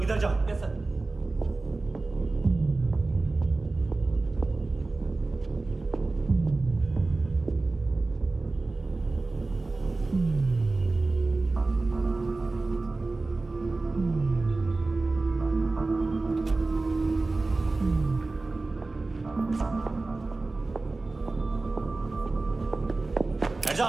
इधर जाओ। Yes sir.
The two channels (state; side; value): quieter; left; 3.4 dB